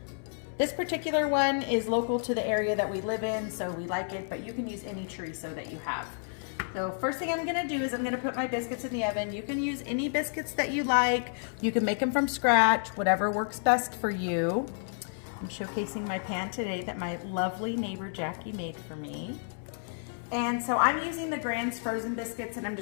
This particular one is local to the area that we live in, so we like it, but you can use any chorizo that you have. So first thing I'm gonna do is I'm gonna put my biscuits in the oven. You can use any biscuits that you like. You can make them from scratch, whatever works best for you. I'm showcasing my pan today that my lovely neighbor Jackie made for me. And so I'm using the Grand's frozen biscuits, and I'm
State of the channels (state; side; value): silent; right; 57 dB below the other